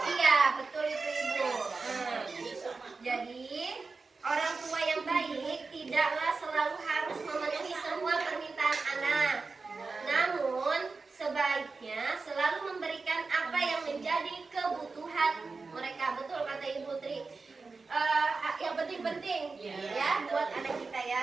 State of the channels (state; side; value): quieter; left; 4.2 dB